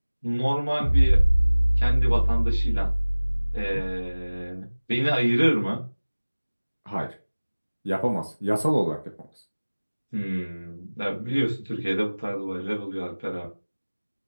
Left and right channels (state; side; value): inverted; both; correlation -1.00